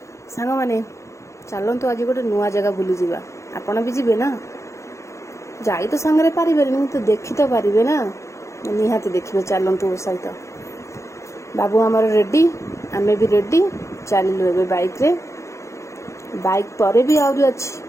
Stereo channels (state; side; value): late; right; 0.14 ms